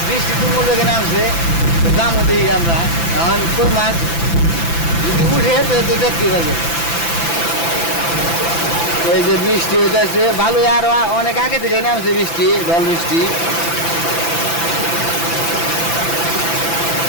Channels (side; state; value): right; late; 5.9 ms